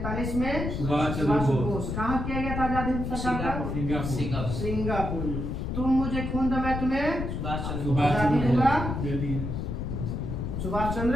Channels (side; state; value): left; noise; rumble, 3 dB below the sound